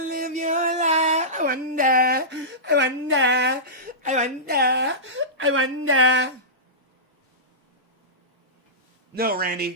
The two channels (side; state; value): both; normal; correlation -0.19